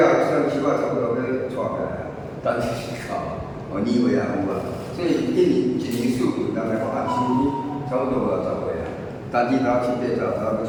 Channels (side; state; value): both; identical; correlation 1.00